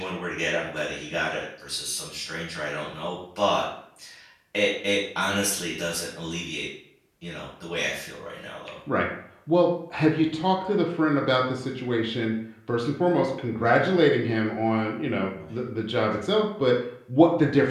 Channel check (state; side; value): identical; both; correlation 1.00